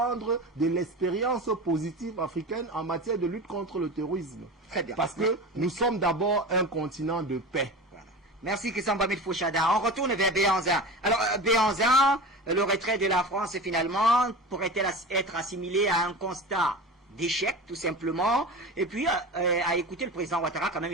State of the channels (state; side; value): normal; both; correlation 0.31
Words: de l'expérience positive africaine en matière de lutte contre le terrorisme. Très bien. Parce que nous sommes d'abord un continent de paix. Voilà. Merci Christian Bamid Fouchada. On retourne vers Béhanzin. Alors, Béhanzin, le retrait de la France, finalement, pourrait-elle être assimilé à un constat d'échec, tout simplement? Et puis, à écouter le président Ouattara, quand même,